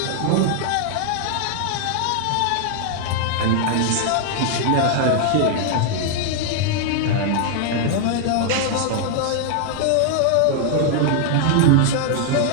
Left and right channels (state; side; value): different; both; correlation 0.00